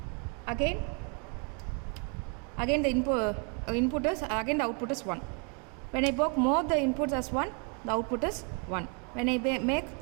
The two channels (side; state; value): left; quieter; 35.9 dB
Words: again the input is, again the output is 1. When I make more the inputs as 1, the output is 1. When I make